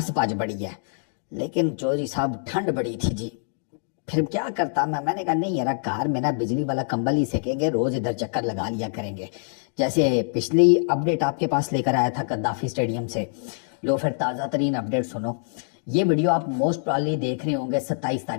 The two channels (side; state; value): right; silent; digital silence